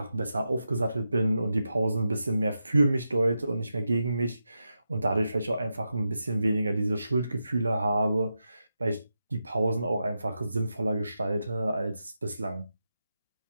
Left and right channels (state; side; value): inverted; both; correlation -0.88